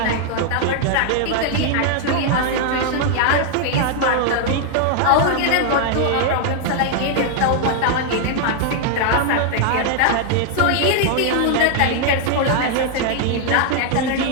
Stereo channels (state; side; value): different; both; correlation 0.00